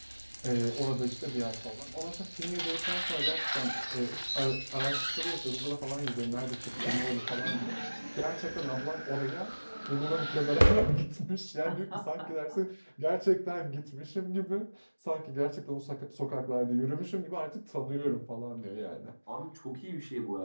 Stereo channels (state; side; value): inverted; both; correlation -1.00